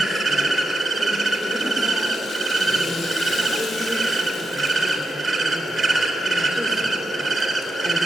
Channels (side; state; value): both; normal; correlation 0.85